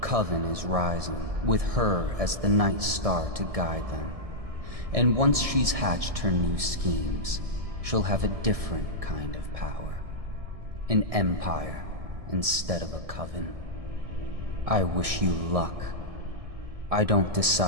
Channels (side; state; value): left; late; 1.7 ms